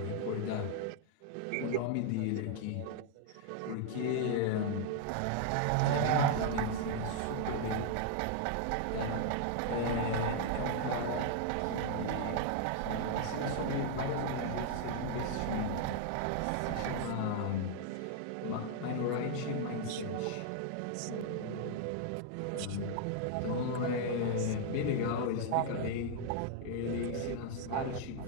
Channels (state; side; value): different; both; correlation 0.00